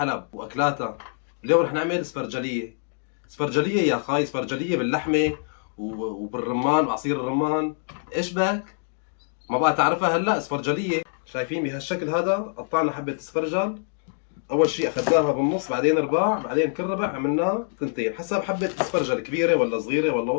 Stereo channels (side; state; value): right; silent; digital silence